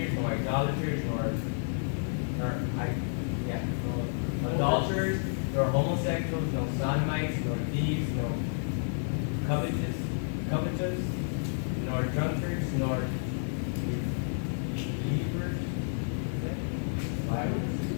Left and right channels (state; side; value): silent; right; digital silence